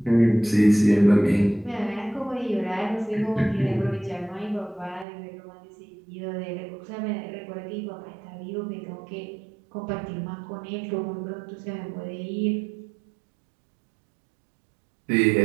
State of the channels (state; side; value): drops out; left; at 5.1 s